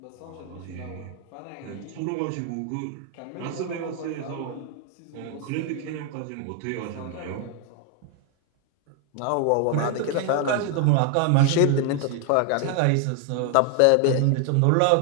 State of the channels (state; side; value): different; both; correlation 0.00